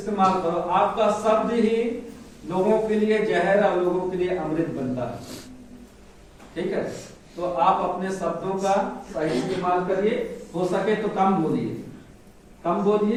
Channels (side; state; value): both; identical; correlation 1.00